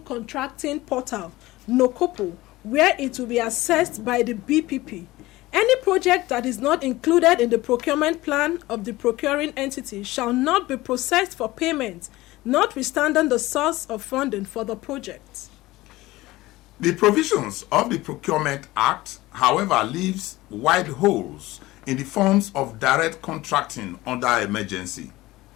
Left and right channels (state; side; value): quieter; right; 18.5 dB